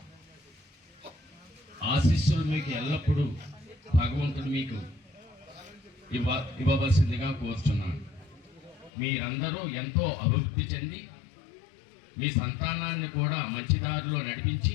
ఆశీస్సులు మీకు ఎల్లప్పుడూ భగవంతుడు మీకు ఇవ్వవలసిందిగా కోరుచున్నాను. మీరందరూ ఎంతో అభివృద్ధి చెంది మీ సంతానాన్ని కూడా మంచి దారిలో నడిపించి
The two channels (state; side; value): drops out; right; at 8.9 s